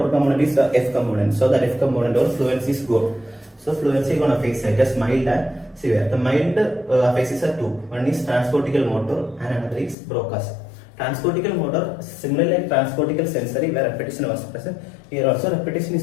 component is the F component. So that F component or fluency is gone. So fluency is on aphasia, just mild and severe. The mild aphasias are two. One is transportical motor and another is Broca's. Transportical motor, similarly like transportical sensory where repetition was present, here also repetition is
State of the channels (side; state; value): right; drops out; at 10.0 s